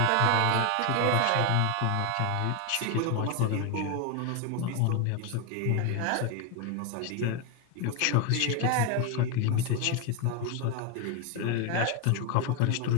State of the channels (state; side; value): different; both; correlation 0.01